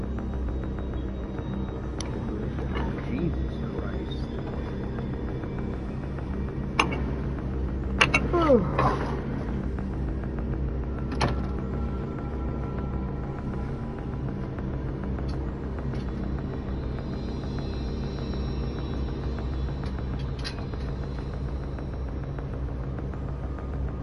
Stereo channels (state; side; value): identical; both; correlation 1.00